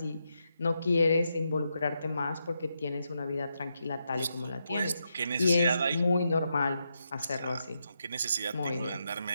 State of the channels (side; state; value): both; inverted; correlation -0.83